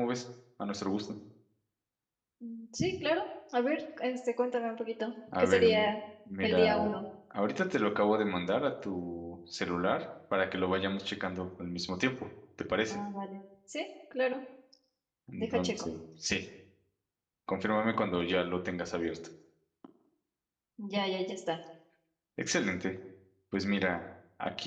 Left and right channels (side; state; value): both; identical; correlation 1.00